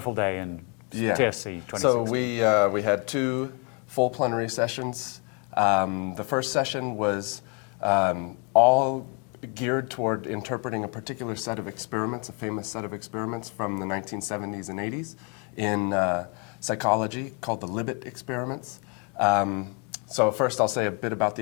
day in TSC 26. So we had 2 full plenary sessions. The first session was all geared toward interpreting a particular set of experiments, a famous set of experiments from the 1970s and 80s in psychology called the Libet experiments. So first I'll say a bit about the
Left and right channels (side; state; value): right; quieter; 35.5 dB